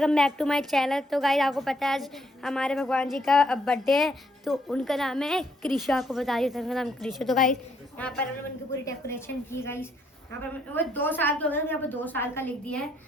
back to my channel. तो guys आपको पता है आज हमारे भगवान जी का बर्थडे है, तो उनका नाम है कृषा। आपको बता दिया था उनका नाम कृषा। तो गाइस यहाँ पर हमने उनकी पूरी डेकोरेशन की। गाइस यहाँ पर वो 2 साल के हो गए, यहाँ पर 2 साल का लिख दिया है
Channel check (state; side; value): normal; both; correlation 0.72